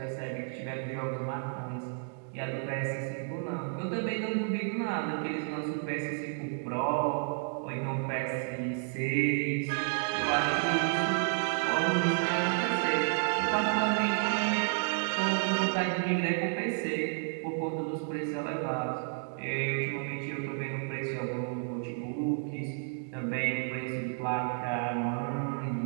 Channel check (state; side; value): silent; left; 57 dB below the other